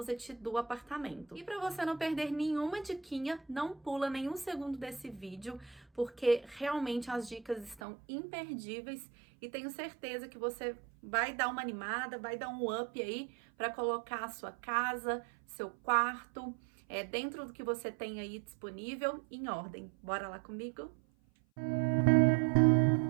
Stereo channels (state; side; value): drops out; left; at 7.8 s